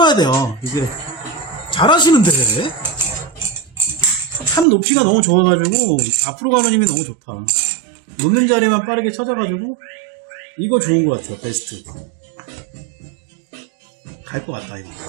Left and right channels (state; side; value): drops out; left; at 4.7 s